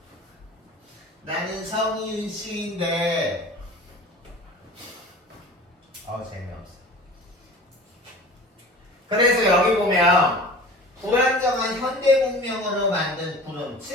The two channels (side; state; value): both; normal; correlation 0.40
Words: 나는 성이윤 씨인데 재미없어. 그래서 여기 보면 불안정한 현대 문명으로 만든 구름,